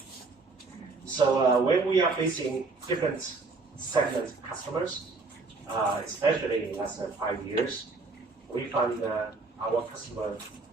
So when we are facing different segment customers, especially in the last 5 years, we found our customer,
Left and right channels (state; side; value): quieter; left; 3.9 dB